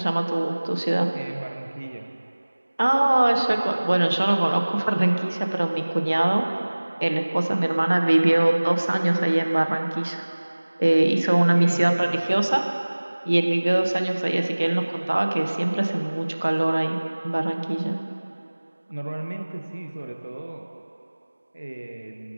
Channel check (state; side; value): inverted; both; correlation -1.00